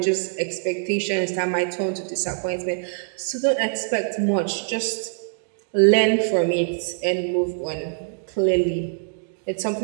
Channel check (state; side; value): silent; left; digital silence